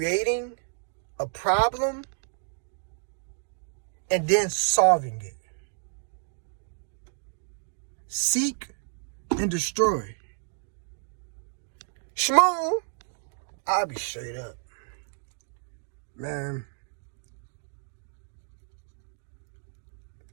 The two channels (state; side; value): silent; left; 58 dB below the other